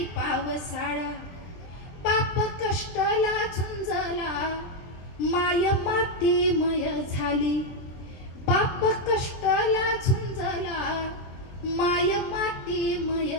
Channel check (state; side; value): late; right; 23 ms